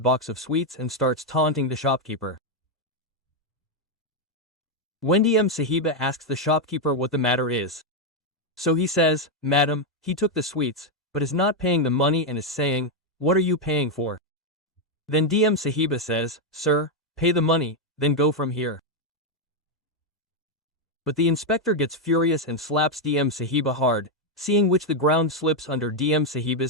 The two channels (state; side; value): normal; both; correlation 0.02